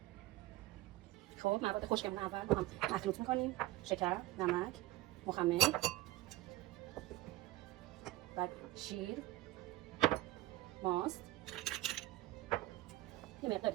خب مواد خشکمون اول با هم مخلوط میکنیم: شکر، نمک، مخمر، بعد شیر، ماست. یه مقداری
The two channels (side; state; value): left; quieter; 17.2 dB